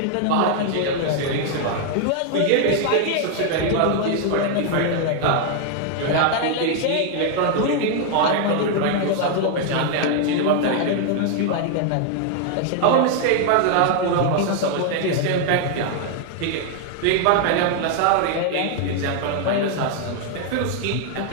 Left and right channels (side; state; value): both; different; correlation 0.00